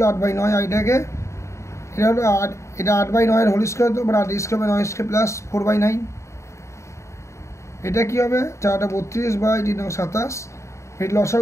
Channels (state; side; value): late; right; 0.14 ms